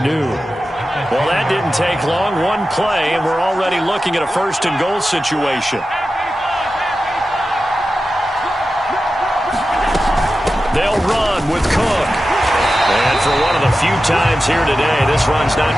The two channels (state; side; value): normal; both; correlation 0.93